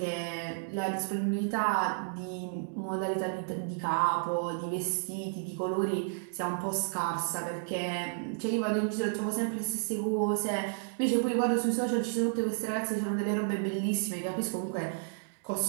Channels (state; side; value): silent; left; digital silence